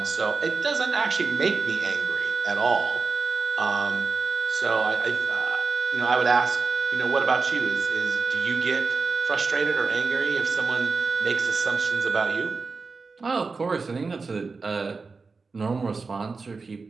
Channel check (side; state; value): left; quieter; 4.3 dB